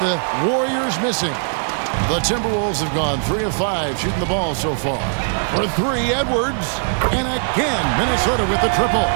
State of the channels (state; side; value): silent; left; digital silence